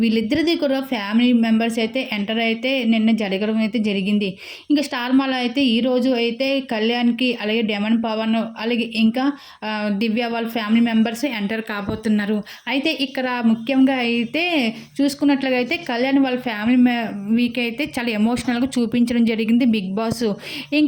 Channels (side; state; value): both; identical; correlation 1.00